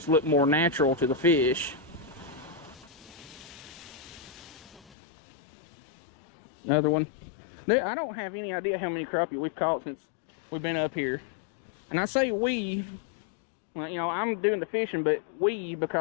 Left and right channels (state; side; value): drops out; right; at 5.0 s